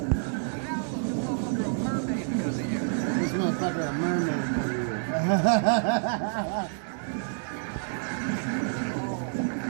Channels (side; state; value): left; silent; 59 dB below the other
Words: This motherfucker a mermaid for you.